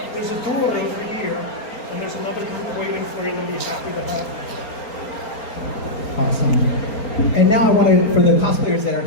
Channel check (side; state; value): right; late; 4.3 ms